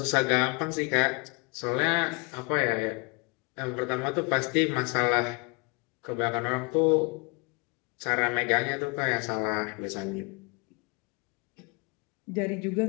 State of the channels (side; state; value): right; quieter; 30.0 dB